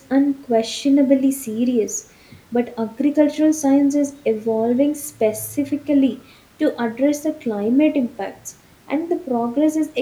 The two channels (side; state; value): both; identical; correlation 1.00